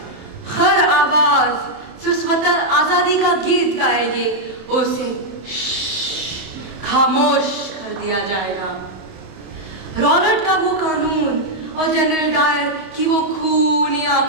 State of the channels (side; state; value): left; late; 27 ms